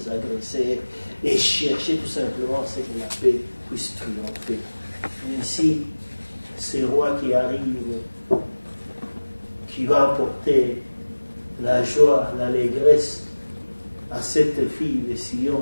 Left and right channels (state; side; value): inverted; both; correlation -1.00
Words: agresseurs, et chercher tout simplement ce que la paix puisse triompher. Ainsi, ce roi qui arrive, qui va apporter la joie, l'allégresse à cette fille de